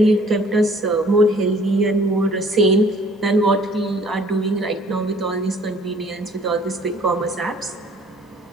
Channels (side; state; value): both; normal; correlation 0.55